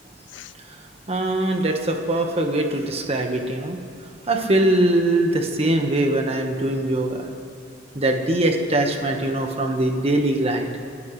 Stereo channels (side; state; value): both; normal; correlation 0.53